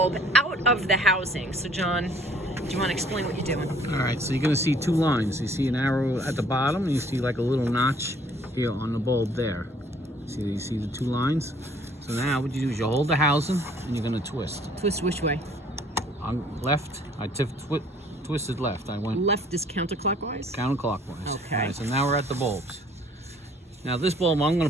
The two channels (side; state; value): both; normal; correlation 0.58